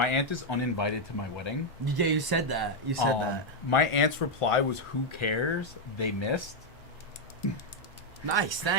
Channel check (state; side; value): normal; both; correlation 0.01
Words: aunt is uninvited to my wedding. Yeah, you said that. That. My aunt's reply was, "Who cares? They missed." Nice,